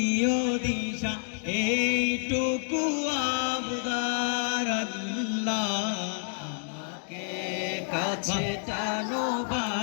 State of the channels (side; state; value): right; silent; digital silence